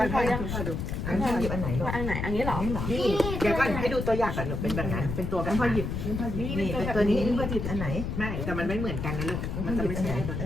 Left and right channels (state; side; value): noise; left; rumble, 3 dB below the sound